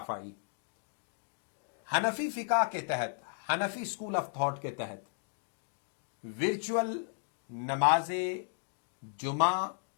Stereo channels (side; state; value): right; silent; digital silence